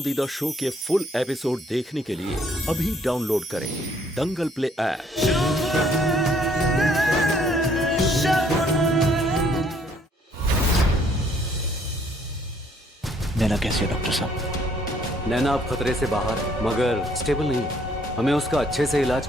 शो के फुल एपिसोड देखने के लिए अभी डाउनलोड करें दंगल प्ले ऐप। नैना कैसी है डॉक्टर साहब? नैना अब खतरे से बाहर है मगर स्टेबल नहीं है। हमें उसका अच्छे से इलाज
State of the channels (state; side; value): normal; both; correlation 0.65